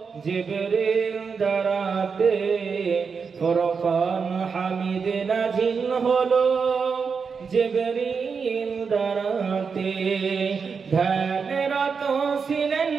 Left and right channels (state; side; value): quieter; left; 5.6 dB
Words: জিবরিল দ্বারাতে ফুরকান হামিদ নাজিল হলো জিবরিল দ্বারাতে ধ্যানরত ছিলেন